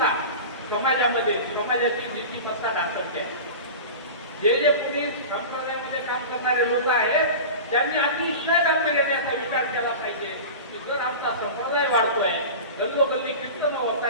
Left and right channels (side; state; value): both; inverted; correlation -0.31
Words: समाजामध्ये समाजाची नीतिमत्ता ढासळते. जे पुढे संप्रदायामध्ये काम करणारे लोक आहेत त्यांनी अतिशय गांभीर्याने याचा विचार केला पाहिजे की जर आमचा संप्रदाय वाढतोय गल्लोगल्ली कीर्तन होत